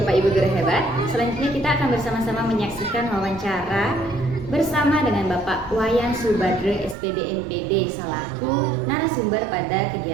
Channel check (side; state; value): left; drops out; at 7.0 s